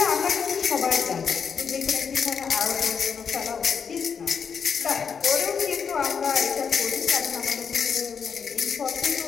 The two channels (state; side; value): quieter; right; 6.5 dB